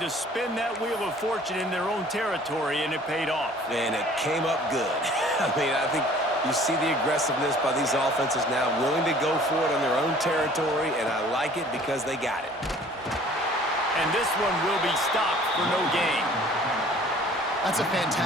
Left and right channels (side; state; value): both; normal; correlation 0.52